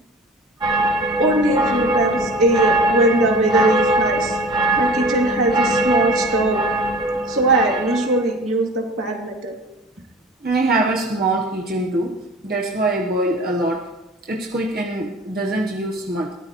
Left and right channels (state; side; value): normal; both; correlation 0.41